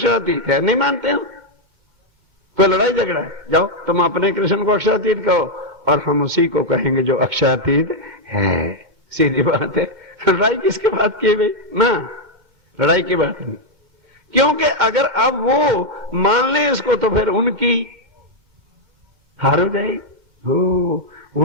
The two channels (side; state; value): left; late; 2.2 ms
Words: है, नहीं मानते हम, कोई लड़ाई झगड़ा है, जाओ तुम अपने कृष्ण को अक्षरातीत कहो और हम उसी को कहेंगे जो अक्षरातीत है। सीधी बात है। लड़ाई किसके बात की भाई ना, लड़ाई की बात नहीं, क्योंकि अगर अब वो मान ले इसको तो फिर उनकी हार हो जाएगी।